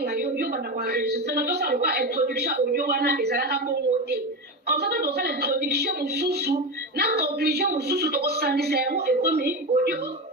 yo bana kwa enregistrer na to ça quoi introduction audio wana ezala ka pomoter comme ça to ça l'introduction mususu na conclusion mususu to ko sandisa yango et comme audio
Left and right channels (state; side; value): normal; both; correlation 0.19